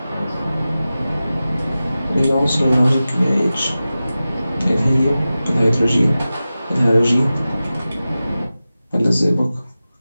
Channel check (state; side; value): inverted; both; correlation -0.95